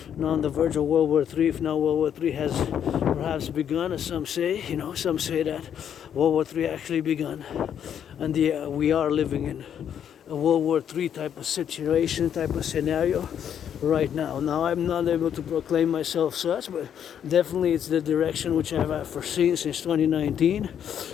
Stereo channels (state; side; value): quieter; right; 9.0 dB